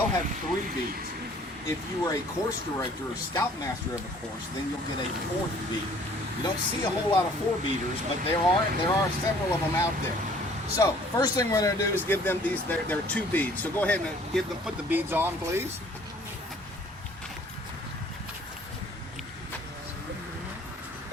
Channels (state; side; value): normal; both; correlation 0.55